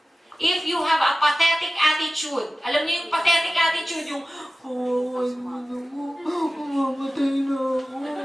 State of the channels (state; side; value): normal; both; correlation 0.96